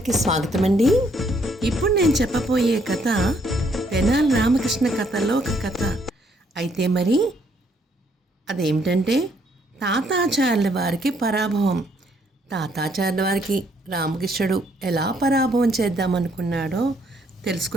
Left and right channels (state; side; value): normal; both; correlation 0.69